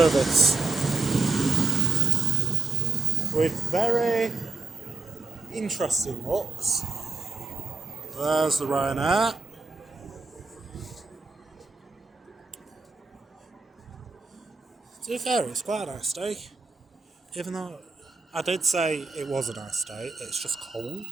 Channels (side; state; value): left; quieter; 4.1 dB